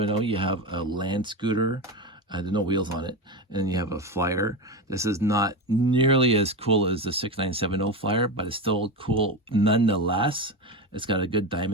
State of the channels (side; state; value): both; normal; correlation 0.19